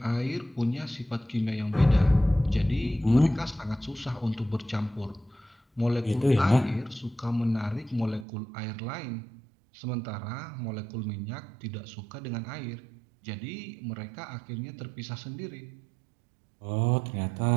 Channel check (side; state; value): left; drops out; at 8.2 s